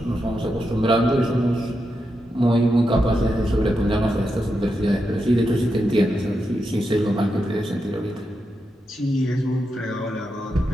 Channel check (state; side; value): normal; both; correlation 0.86